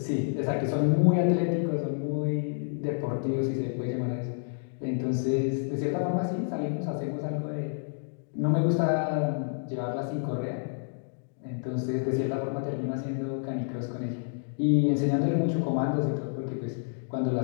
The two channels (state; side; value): silent; right; digital silence